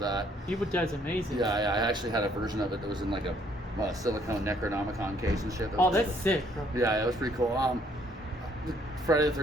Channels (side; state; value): both; normal; correlation 0.65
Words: that. Evil Dead's amazing. Yeah, I actually had a version of it that was in like a silicone Necronomicon case and shit. That's sick, bro. Yeah, it was pretty cool. Friday the